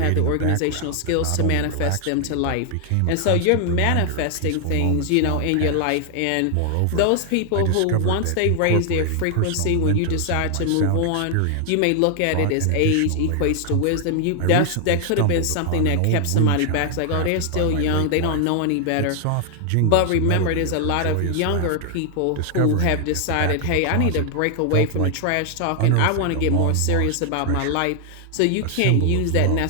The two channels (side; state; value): both; different; correlation 0.00